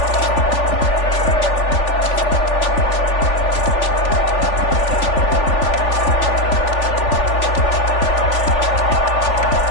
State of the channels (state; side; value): late; right; 3.4 ms